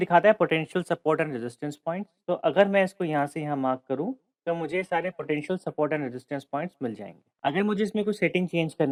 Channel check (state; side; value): identical; both; correlation 1.00